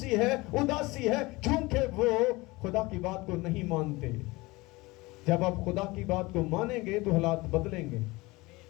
है, उदासी है, क्योंकि वो खुदा की बात को नहीं मानते। जब आप खुदा की बात को मानेंगे तो हालात बदलेंगे।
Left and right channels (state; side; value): quieter; right; 22.3 dB